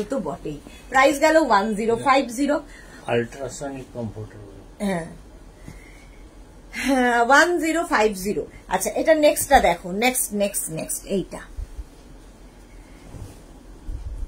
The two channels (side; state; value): both; identical; correlation 1.00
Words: তো বটেই। প্রাইস গেল 1050। আল্ট্রাসনিক কমফোর্টেবল, হ্যাঁ 1050। আচ্ছা এটা নেক্সটটা দেখো, নেক্সট নেক্সট নেক্সট এইটা,